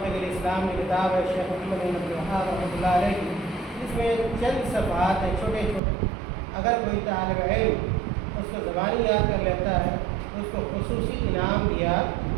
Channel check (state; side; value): drops out; left; at 5.8 s